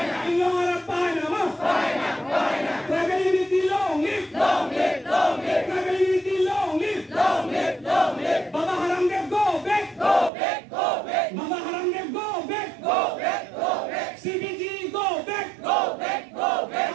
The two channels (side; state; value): left; drops out; at 10.3 s